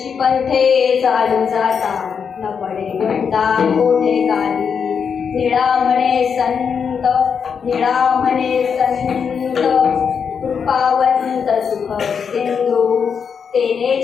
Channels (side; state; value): right; quieter; 6.6 dB